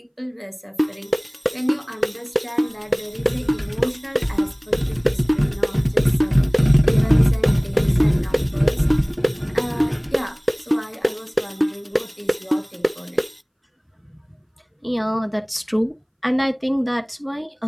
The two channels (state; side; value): identical; both; correlation 1.00